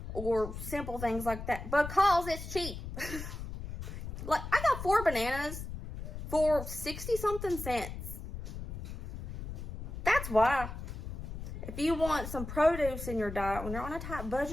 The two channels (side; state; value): left; noise; rumble, 8 dB below the sound